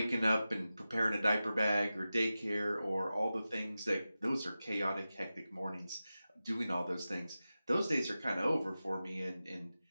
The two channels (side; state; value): both; inverted; correlation -0.94